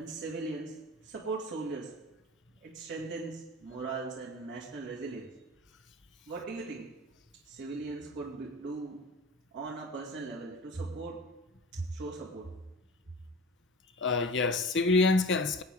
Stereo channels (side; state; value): both; normal; correlation 0.37